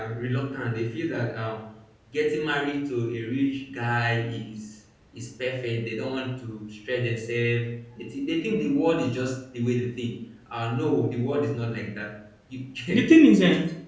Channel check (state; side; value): identical; both; correlation 1.00